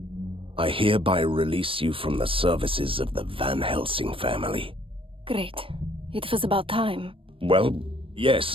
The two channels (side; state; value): left; late; 0.26 ms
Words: I hereby release you from the services of the Van Helsing family. Great. It was about time. Well,